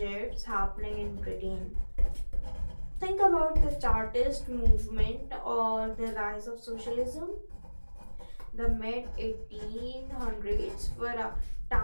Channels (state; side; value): inverted; both; correlation -1.00